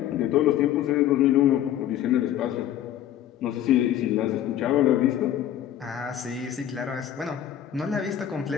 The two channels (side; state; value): right; quieter; 11.2 dB